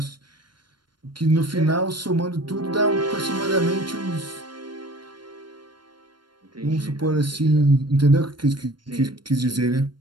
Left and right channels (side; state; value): left; late; 0.72 ms